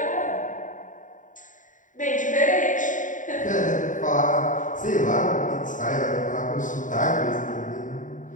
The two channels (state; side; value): late; right; 0.37 ms